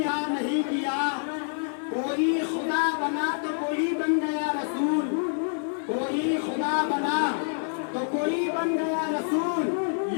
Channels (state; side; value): silent; right; 60 dB below the other